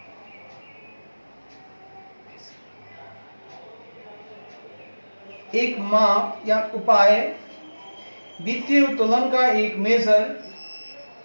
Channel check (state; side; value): inverted; both; correlation -1.00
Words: एक माप या उपाय, वित्तीय उत्तोलन का एक मेजर